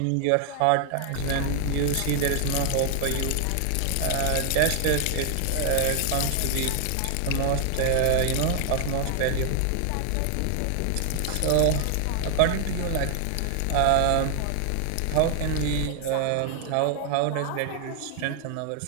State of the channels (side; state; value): both; different; correlation 0.00